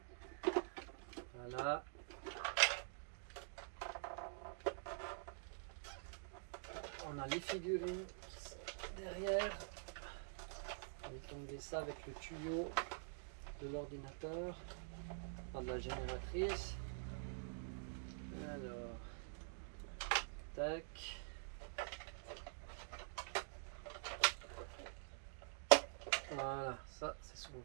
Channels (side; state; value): left; silent; digital silence